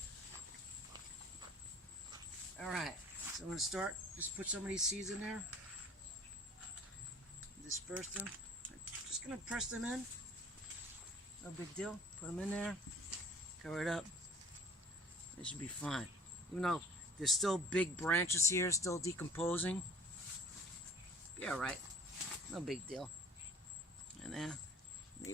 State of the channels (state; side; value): normal; both; correlation 0.48